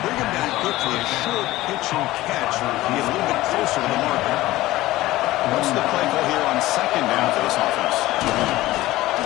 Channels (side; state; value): right; quieter; 17.1 dB